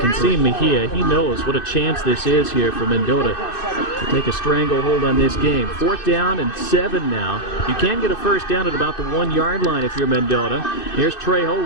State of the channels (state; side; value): late; right; 2.6 ms